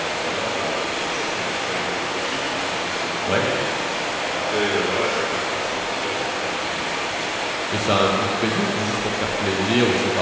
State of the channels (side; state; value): both; identical; correlation 1.00